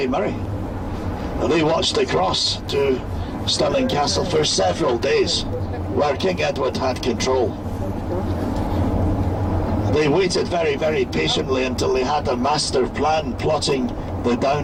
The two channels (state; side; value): identical; both; correlation 1.00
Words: Murray. They watched across to Stirling Castle for several days, where King Edward had control. They waited very, very patiently until they had a master plan plotting the